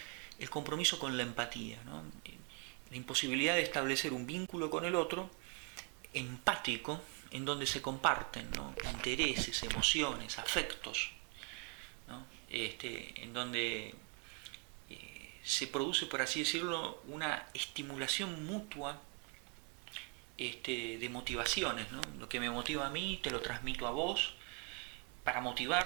el compromiso con la empatía, ¿no? La imposibilidad de establecer un vínculo con el otro empático en donde se comparten, ¿no?, intereses, emociones, afectos, ¿no? En donde se produce, por así decirlo, una estimulación mutua de motivaciones, ¿no? Lo que me motiva a mí te lo transmito a vos para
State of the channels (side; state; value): left; quieter; 34.0 dB